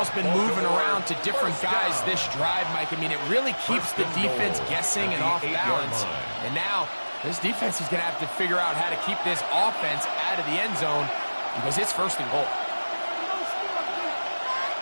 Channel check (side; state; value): both; inverted; correlation -1.00